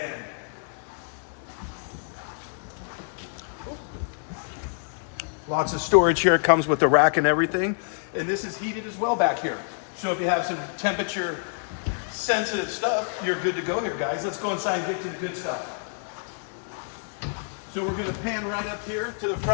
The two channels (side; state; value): right; silent; 60 dB below the other